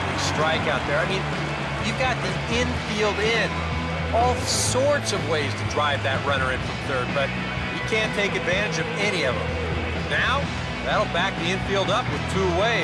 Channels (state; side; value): identical; both; correlation 1.00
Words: strikeout there. I mean, you've got the infield in. All sorts of ways to drive that runner in from third, but you can't take advantage of any of them. Now, that'll back the infield up with 2